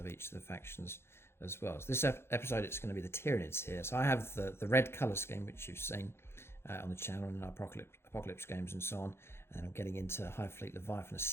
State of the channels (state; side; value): late; right; 0.12 ms